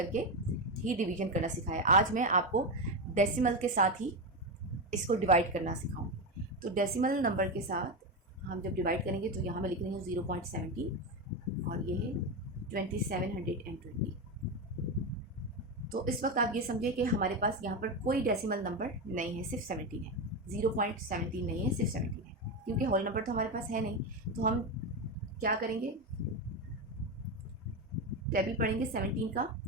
ही डिवीजन करना सिखाया। आज मैं आपको डेसिमल के साथ ही इसको डिवाइड करना सिखाऊंगी। तो डेसिमल नंबर के साथ हम जब डिवाइड करेंगे तो यहाँ मैं लिख रही हूँ 0.17 और ये है 2720। तो इस वक्त आप ये समझिए कि हमारे पास यहाँ पर कोई डेसिमल नंबर नहीं है, सिर्फ 17 है, 0.17 नहीं है, सिर्फ 17 है, क्योंकि होल नंबर तो हमारे पास है नहीं। तो हम क्या करेंगे, टेबल पढ़ेंगे 17 का,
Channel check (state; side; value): normal; both; correlation 0.13